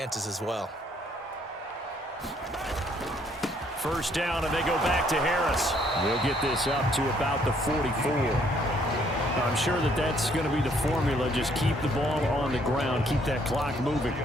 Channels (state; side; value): normal; both; correlation 0.66